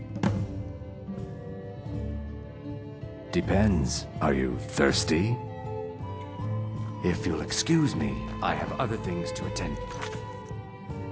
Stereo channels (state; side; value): identical; both; correlation 1.00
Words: Depends. Are you thirsty? If you'll excuse me, I have other things to attend to.